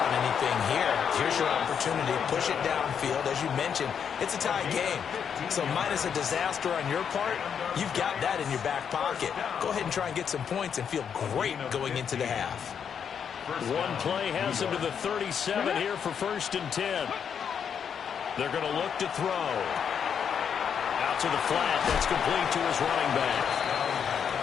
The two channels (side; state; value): right; quieter; 7.5 dB